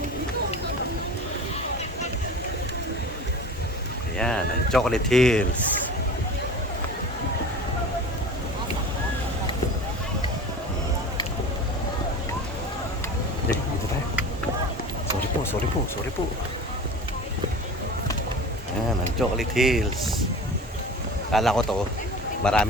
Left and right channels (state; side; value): normal; both; correlation 0.36